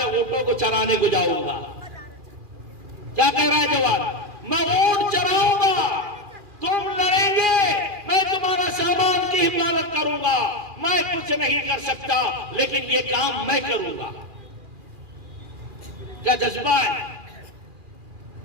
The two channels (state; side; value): late; left; 2.4 ms